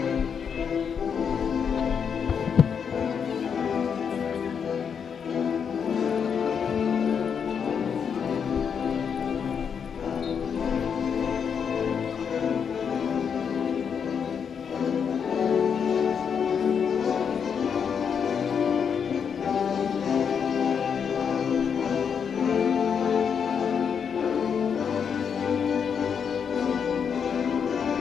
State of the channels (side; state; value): right; quieter; 7.0 dB